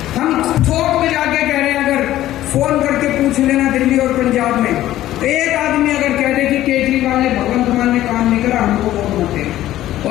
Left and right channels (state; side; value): quieter; right; 14.0 dB